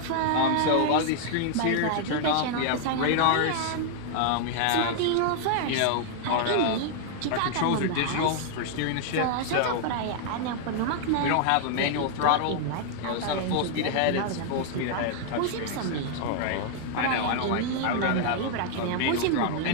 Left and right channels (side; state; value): both; different; correlation 0.00